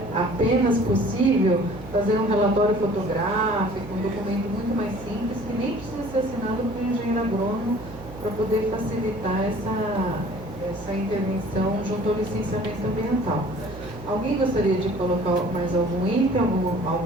apenas possível fazer um relatório fotográfico, um documento muito mais simples, que nem precisa ser assinado por um engenheiro agrônomo, para poder facilitar essa intervenção junto ao licenciamento ambiental. Alguém gostaria de colocar mais algum item,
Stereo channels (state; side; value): noise; right; hum, 15 dB below the sound